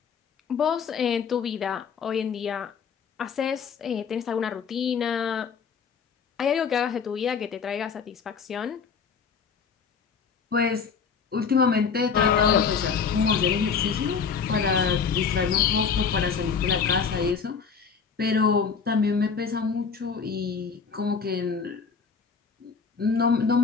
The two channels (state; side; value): quieter; right; 6.0 dB